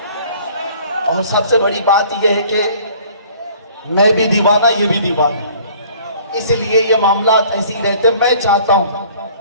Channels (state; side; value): inverted; both; correlation -0.52